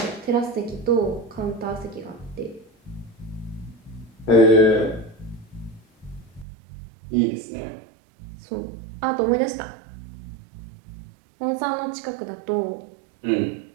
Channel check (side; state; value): left; drops out; at 6.5 s